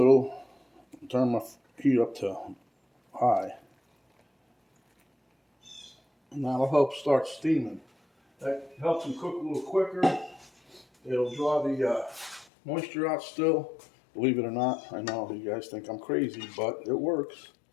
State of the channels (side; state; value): right; drops out; at 12.5 s